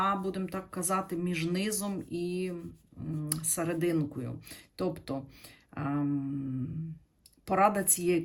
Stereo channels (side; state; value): both; identical; correlation 1.00